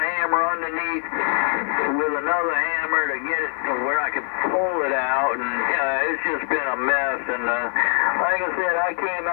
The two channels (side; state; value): right; silent; 61 dB below the other